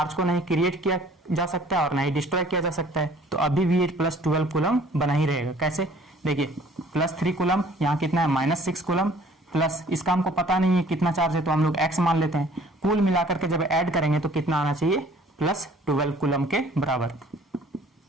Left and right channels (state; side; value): normal; both; correlation 0.54